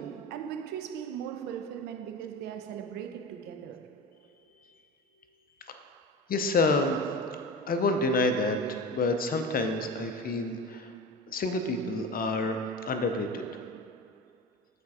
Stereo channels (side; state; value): both; normal; correlation 0.30